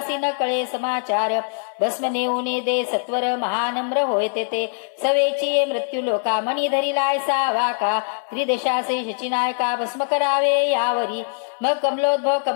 न कळे समाचार भस्म नेऊने दे सत्वर महानम्र होय ते सवेची मृत्यू लोका मणी धरिलाय सा वाका त्रिदेशासे शचिनायका भस्म करावे यावरी मग कमलोद्भव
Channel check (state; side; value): silent; right; digital silence